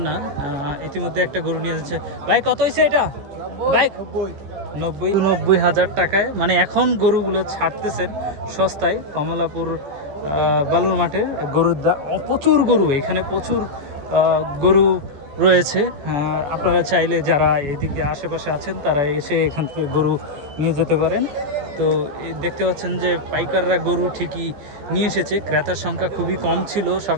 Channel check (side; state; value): left; late; 14 ms